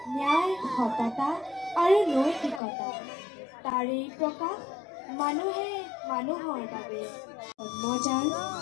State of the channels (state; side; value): drops out; right; at 2.6 s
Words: ন্যায়, সততা আৰু নৈতিকতা, তাৰেই প্ৰকাশ মানুহে মানুহৰ বাবে। জন্মজাল